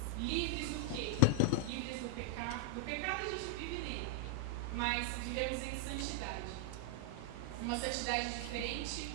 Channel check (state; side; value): different; both; correlation -0.01